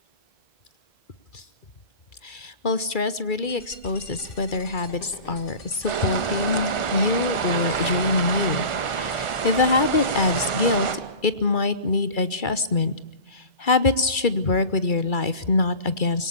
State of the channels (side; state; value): right; late; 2.3 ms